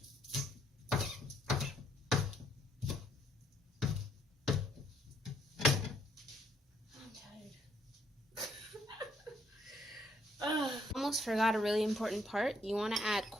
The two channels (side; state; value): both; normal; correlation 0.70